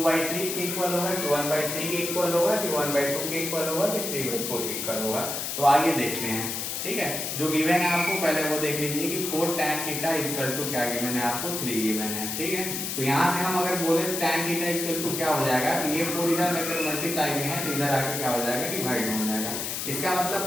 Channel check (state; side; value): noise; left; hiss, 3 dB below the sound